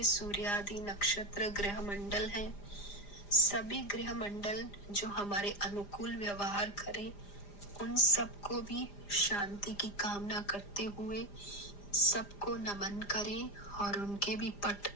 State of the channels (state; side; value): late; right; 4.9 ms